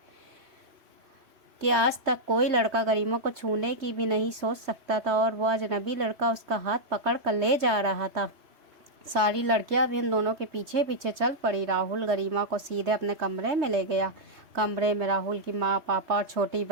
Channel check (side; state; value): left; late; 3.3 ms